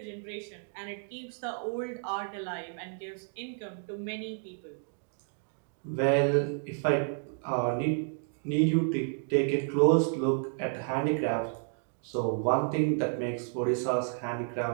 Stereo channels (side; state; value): left; silent; 57 dB below the other